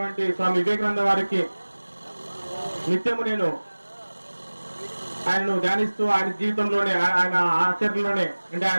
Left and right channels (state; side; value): inverted; both; correlation -1.00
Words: స్వామి వివేకానంద వారికి నిత్యము నేను ఆయనను ధ్యానిస్తూ ఆయన జీవితంలోనే ఆయన ఆచరణలోనే అంటే